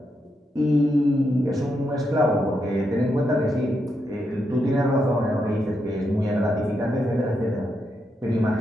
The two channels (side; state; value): both; normal; correlation 0.82